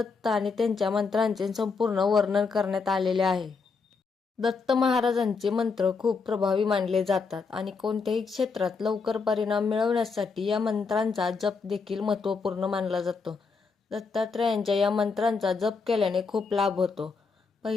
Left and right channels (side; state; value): right; quieter; 4.8 dB